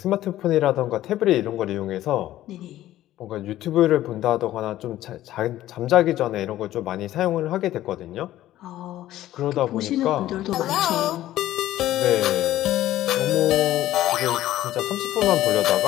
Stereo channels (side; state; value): right; quieter; 14.0 dB